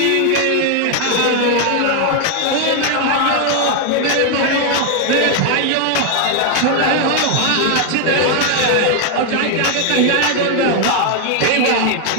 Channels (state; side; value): different; both; correlation 0.01